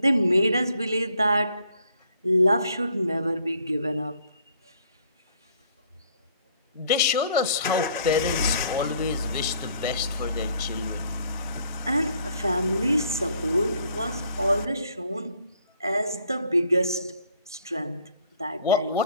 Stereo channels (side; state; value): both; inverted; correlation -0.62